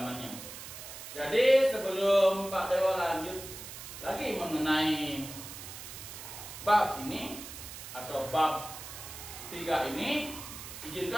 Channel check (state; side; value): noise; right; hiss, 11 dB below the sound